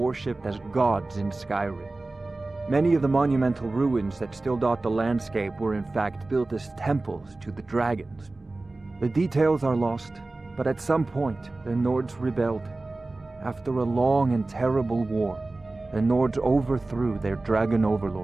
as gods in Skyrim. Many of the monumental ruins that still dot the landscape were in fact built as temples to the dragons. The details are lost, but at some point, the Nords rebelled. After a long and terrible war, the Nords overthrew their dragon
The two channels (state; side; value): quieter; left; 3.1 dB